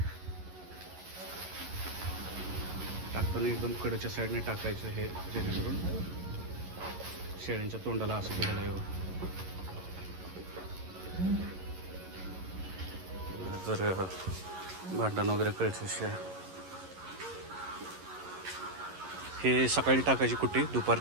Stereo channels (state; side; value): late; left; 11 ms